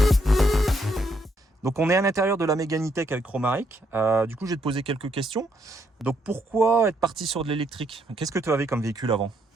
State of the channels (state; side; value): normal; both; correlation 0.74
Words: Donc on est à l'intérieur de la Mégane E-Tech avec Romaric. Du coup, je vais te poser quelques questions. Donc pourquoi être parti sur de l'électrique? Qu'est-ce que tu avais comme véhicule avant?